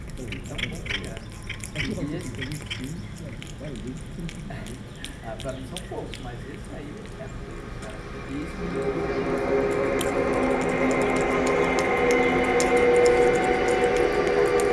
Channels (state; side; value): identical; both; correlation 1.00